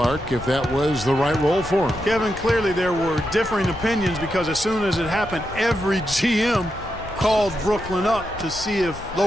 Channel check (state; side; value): noise; left; rumble, 14 dB below the sound